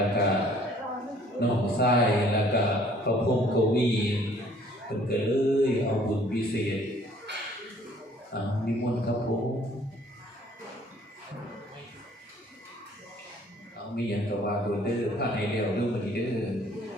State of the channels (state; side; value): normal; both; correlation 0.58